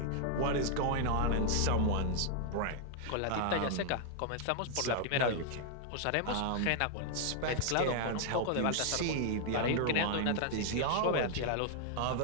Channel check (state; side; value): different; both; correlation 0.00